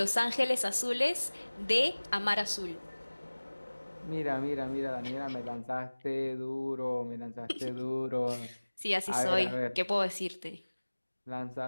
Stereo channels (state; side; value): inverted; both; correlation -1.00